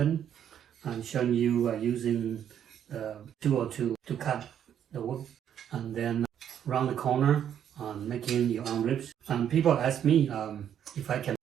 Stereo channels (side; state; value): left; quieter; 9.5 dB